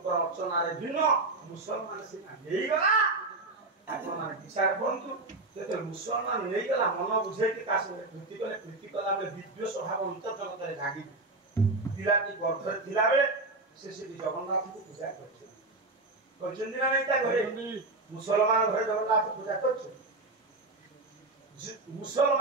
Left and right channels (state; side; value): quieter; left; 3.2 dB